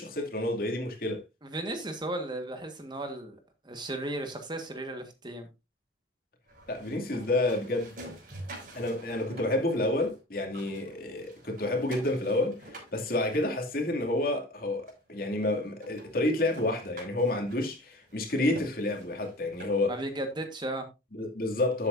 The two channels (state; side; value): normal; both; correlation 0.40